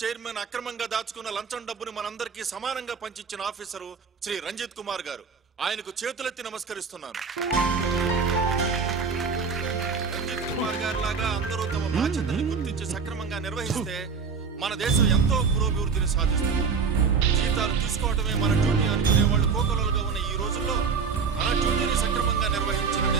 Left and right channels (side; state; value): left; quieter; 5.5 dB